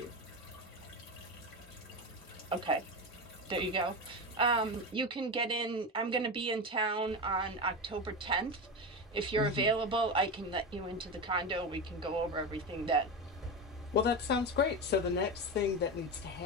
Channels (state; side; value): normal; both; correlation 0.19